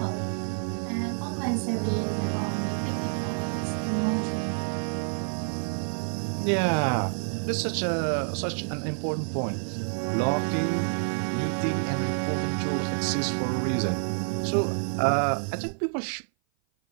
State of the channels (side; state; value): left; silent; 56 dB below the other